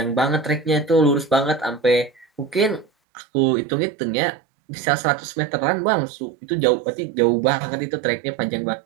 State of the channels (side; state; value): left; drops out; at 2.9 s